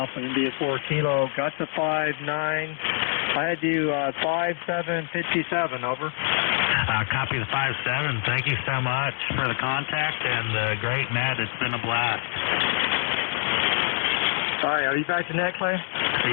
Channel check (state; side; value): silent; right; 61 dB below the other